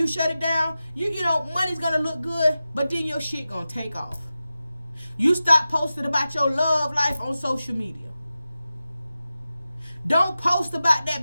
shut it down? You know, money's going to look good, but then your shit going to take off. You stop posting about your love life on social media. Don't post about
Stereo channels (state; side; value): inverted; both; correlation -0.94